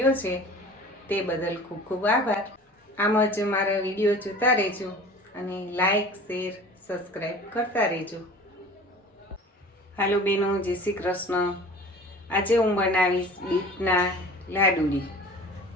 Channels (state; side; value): normal; both; correlation 0.42